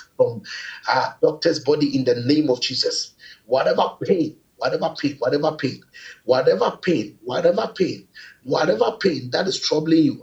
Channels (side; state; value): both; identical; correlation 1.00